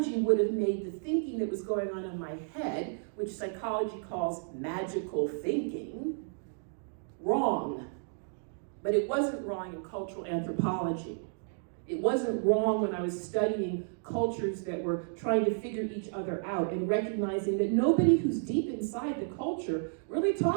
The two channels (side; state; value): left; silent; digital silence